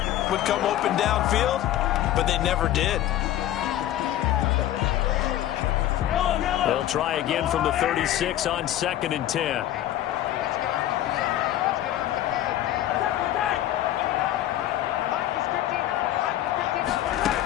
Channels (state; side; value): quieter; right; 13.0 dB